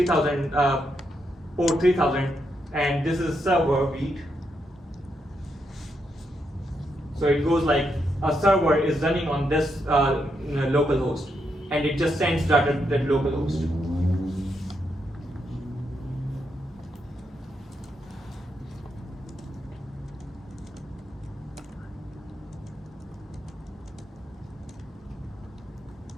port 3000, and this is server beat. So it goes like a server is running on this local host, and it just sends data to that local host.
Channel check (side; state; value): both; normal; correlation 0.81